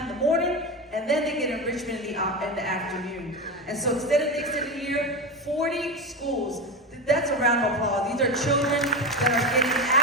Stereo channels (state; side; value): normal; both; correlation 0.19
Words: in the morning, and then they get enrichment in the afternoon. And so extended day, extended year, 40 schools. That's a round of applause. These are children that are getting